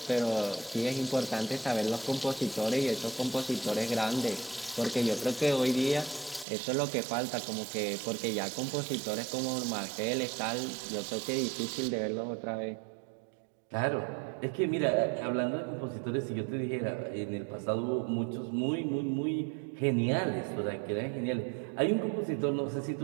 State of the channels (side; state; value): left; drops out; at 6.5 s